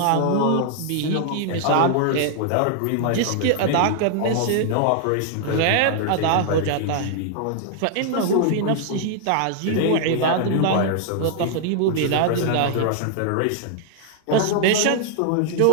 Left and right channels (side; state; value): both; different; correlation -0.01